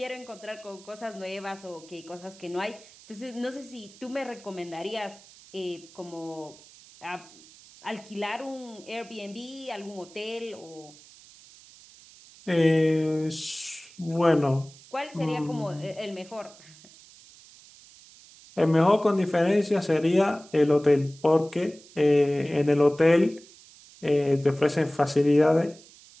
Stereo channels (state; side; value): noise; right; hiss, 23 dB below the sound